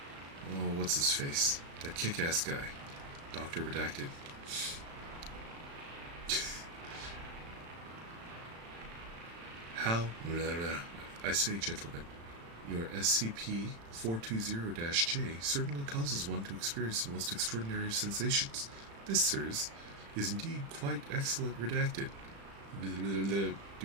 oh, what's his face? That kick-ass guy. Dr. Redacted. How? I say, gentlemen, your SCP-420-J certainly causes one to experience the most extraordinary of sensations. This, sirs, is indeed quite excellent Redacted.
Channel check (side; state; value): left; late; 35 ms